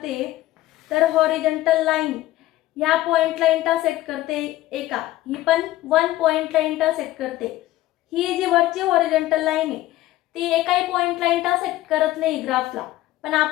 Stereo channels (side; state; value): right; quieter; 15.7 dB